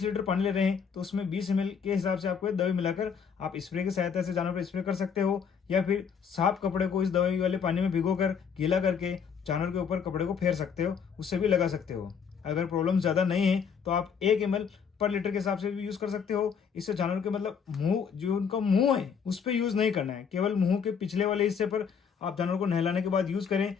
लीटर पानी ले रहे हैं तो उसमें 20 ml के हिसाब से आपको दवाई मिलाकर आप स्प्रे की सहायता से जानवर पर स्प्रे कर सकते हो, या फिर साफ कपड़े को इस दवाई वाले पानी में भिगोकर गीला करके जानवर के ऊपर कपड़े को फेर सकते हो, उससे भी लगा सकते हो। अगर प्रॉब्लम ज़्यादा नहीं है तो आप 1 ml पर लीटर के हिसाब से भी यूज़ कर सकते हो। इससे जानवर के मतलब मुंह, जो उनका मुंह है उस पर यूज़ नहीं करना है, केवल मुंह के पिछले वाले हिस्से पर आप जानवर को नहलाने के बाद यूज़ करें।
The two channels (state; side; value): quieter; right; 6.7 dB